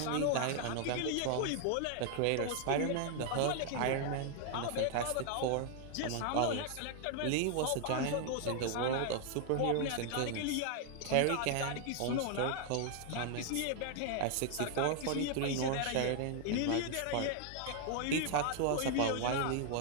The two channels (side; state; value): both; different; correlation 0.00